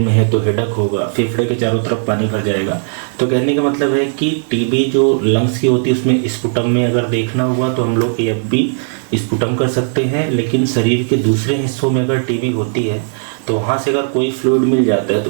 है तो हेडक होगा, फेफड़े के चारों तरफ पानी भर जाएगा। तो कहने का मतलब है कि टीबी जो लंग्स की होती है उसमें स्पुटम में अगर देखना हुआ तो हम लोग एएफबी स्पुटम कर सकते हैं। लेकिन शरीर के दूसरे हिस्सों में अगर टीबी होती है तो वहाँ से अगर कोई फ्लूइड मिल जाता है तो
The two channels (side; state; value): left; silent; digital silence